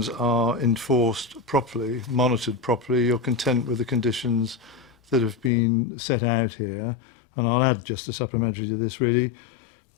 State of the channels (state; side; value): drops out; right; at 5.5 s